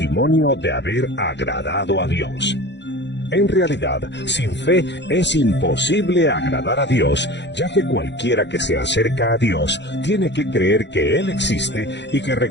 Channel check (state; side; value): late; right; 0.51 ms